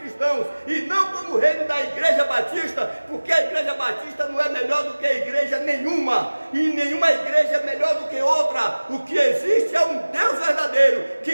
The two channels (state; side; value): inverted; both; correlation -1.00